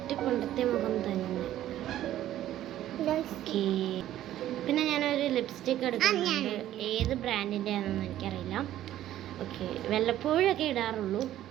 പണ്ടത്തെ മുഖം തന്നെ. ഓക്കേ, പിന്നെ ഞാനൊരു ലിപ്സ്റ്റിക്ക് എടുക്കുന്നുണ്ട്. ഏത് ബ്രാൻഡിൻ്റെ ആണെന്ന് എനിക്കറിയില്ല. ഓക്കെ, വല്ലപ്പോഴൊക്കെ ഇടാറുള്ളൂ.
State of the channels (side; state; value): left; quieter; 12.9 dB